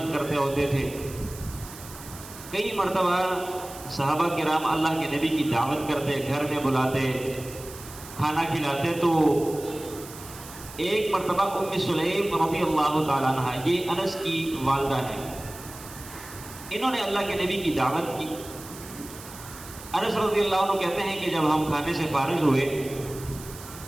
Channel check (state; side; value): noise; right; hiss, 15 dB below the sound